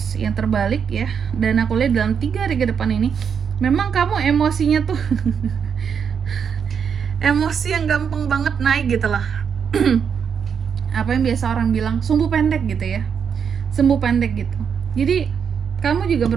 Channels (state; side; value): quieter; left; 7.1 dB